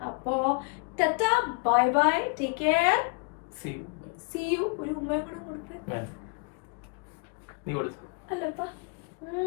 അപ്പോ tata, bye bye, take care, see you. ഒരു ഉമ്മയും കൂടെ കൊടുത്തേ. അല്ലപ്പാ,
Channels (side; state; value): right; quieter; 33.2 dB